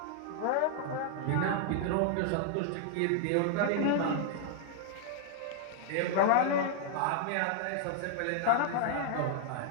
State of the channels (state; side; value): different; both; correlation -0.01